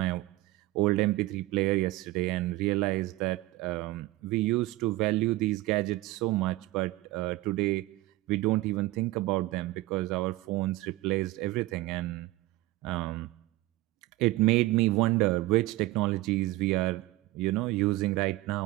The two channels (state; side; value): quieter; left; 18.4 dB